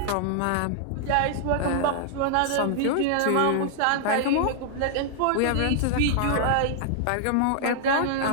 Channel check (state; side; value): different; both; correlation -0.01